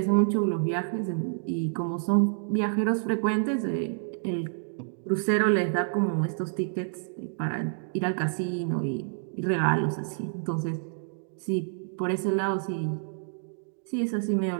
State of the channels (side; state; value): left; silent; digital silence